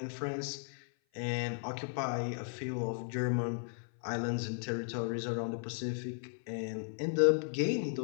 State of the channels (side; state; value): right; silent; 54 dB below the other